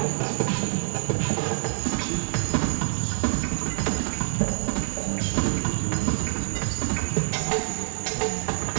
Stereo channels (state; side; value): silent; left; 61 dB below the other